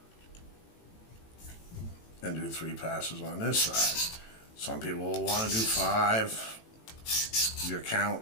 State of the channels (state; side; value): late; right; 18 ms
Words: And do 3 passes on this side. Some people will want to do 5. Your